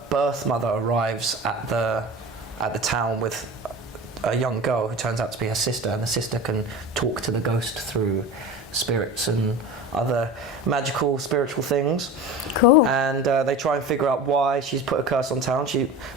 birth mother arrives at the town with a young girl who turns out to be her sister, and the sister can talk to the ghost through spirits and other magical spiritual things. Cool. And they try and figure out why she's put a curse on town. She,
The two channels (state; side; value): normal; both; correlation 0.32